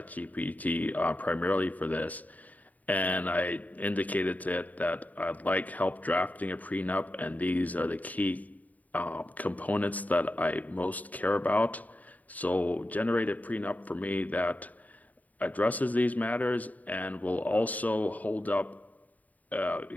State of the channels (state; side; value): late; right; 0.075 ms